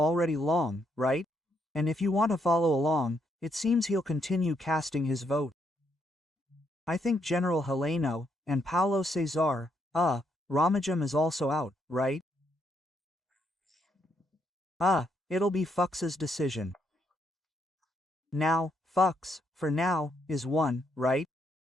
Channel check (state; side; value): normal; both; correlation 0.76